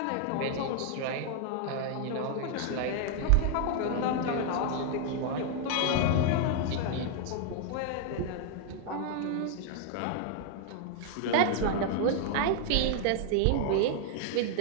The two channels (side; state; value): both; different; correlation 0.00